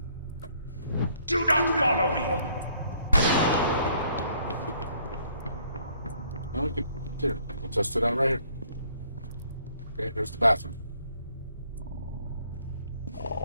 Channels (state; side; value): inverted; both; correlation -0.64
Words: Do not follow me! No, we could here. We'll test it out right here. Okay, here's the bathroom.